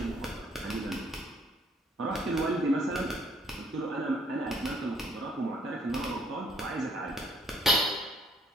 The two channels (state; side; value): normal; both; correlation 0.65